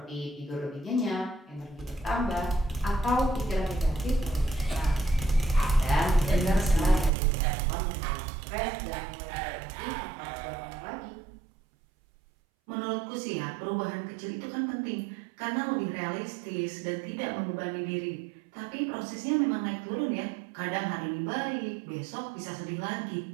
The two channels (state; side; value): drops out; left; at 7.1 s